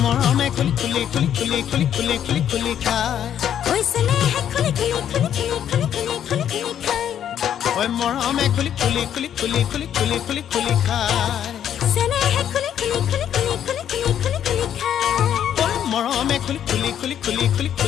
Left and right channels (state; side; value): quieter; right; 9.8 dB